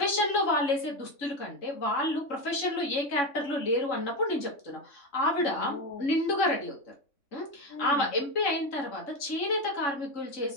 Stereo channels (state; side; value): late; right; 3.5 ms